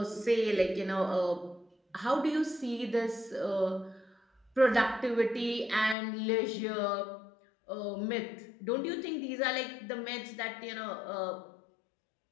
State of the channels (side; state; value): right; drops out; at 6.0 s